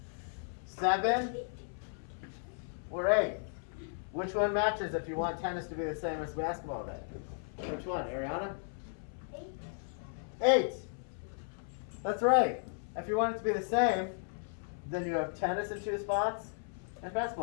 7 or 8? Which one matches if you want tennis to be the same as basketball then? Which one, Ariana? 8. 8. That's right. If you want it to be the same, then you have tennis in 2 spots and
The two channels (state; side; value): silent; right; 54 dB below the other